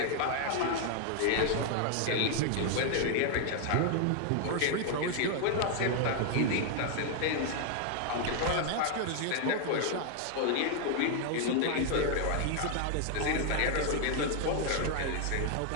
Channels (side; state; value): both; different; correlation 0.00